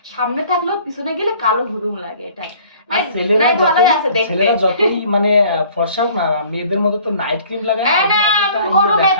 সামনে থাকলেও পিছনে গেলে কালো হুদুম লাগে, এটাই। আর নাই ভালোই আছে দেখতে। ছেলেরা যতই মানে ফর্সা হোক না, মেয়েদের মতো তো নাইট ক্রিম লাগায় না, এই ওই না, জন্য অতটা কোনো দেখায়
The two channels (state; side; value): inverted; both; correlation -0.53